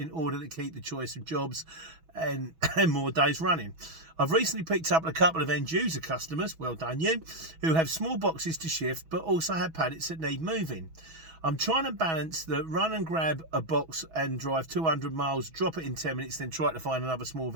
order to keep the choice of jobs and more days running. I've recently picked up a couple of end user customers, well done you, who have small boxes to shift but also have pallets that need moving. I'm trying to balance the run and grab a box and drive 200 miles, drop it in 10 minutes, then try to find another small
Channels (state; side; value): late; left; 6.2 ms